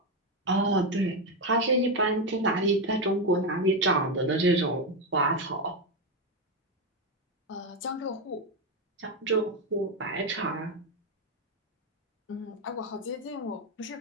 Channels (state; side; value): normal; both; correlation 0.09